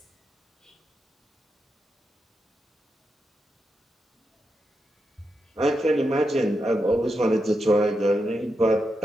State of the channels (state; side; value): normal; both; correlation 0.86